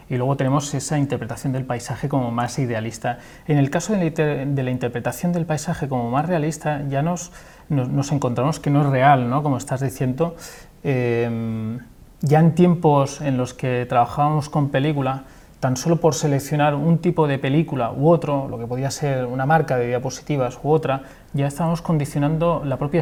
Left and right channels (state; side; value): identical; both; correlation 1.00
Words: y luego tenemos esa interpretación del paisaje como más idealista. En el caso de la interpretación del paisaje como más realista, ya nos encontramos que no es real, ¿no? Como estás diciendo. Ya en tiempos en los que trabajábamos con película, tan solo por seleccionar un tipo de película u otro, lo que podía ser una marca de diapositivas u otra, ya estábamos condicionando la propia